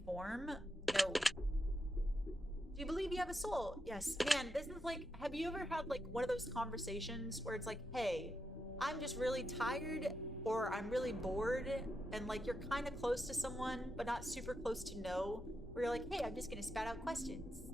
form? No. Do you believe you have a soul? Yes. Man, this is like, have you ever had like one of those conversations where it's like, hey, I'm just really tired or I'm really bored, and like you're kind of close to someone but not super close to know, where you're like, hey, I'm just gonna spat out questions.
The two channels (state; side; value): normal; both; correlation 0.85